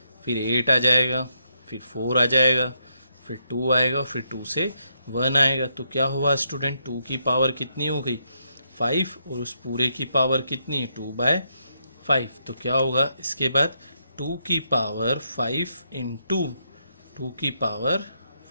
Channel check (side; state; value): both; inverted; correlation -0.78